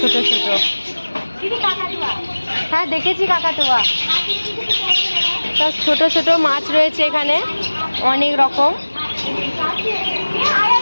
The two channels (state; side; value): inverted; both; correlation -1.00